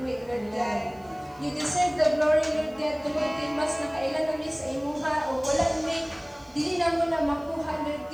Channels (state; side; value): noise; right; hiss, 30 dB below the sound